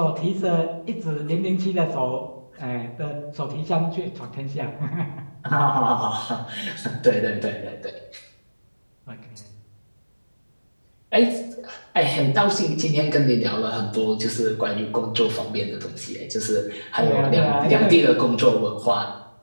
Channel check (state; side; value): inverted; both; correlation -1.00